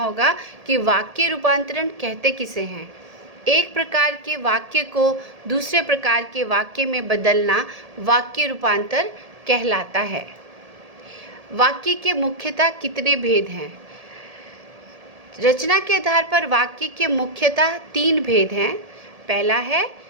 कि वाक्य रूपांतरण कहते किसे हैं। एक प्रकार के वाक्य को दूसरे प्रकार के वाक्य में बदलना वाक्य रूपांतर कहलाता है। वाक्य के मुख्यतः कितने भेद हैं? रचना के आधार पर वाक्य के मुख्यतः 3 भेद हैं। पहला है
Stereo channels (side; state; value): left; late; 1.7 ms